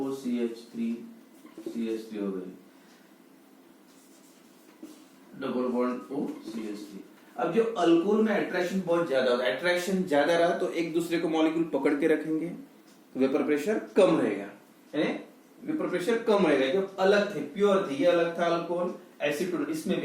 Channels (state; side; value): identical; both; correlation 1.00